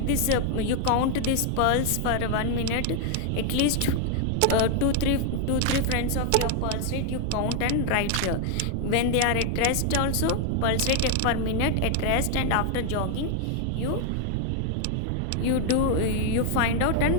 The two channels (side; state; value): both; different; correlation 0.00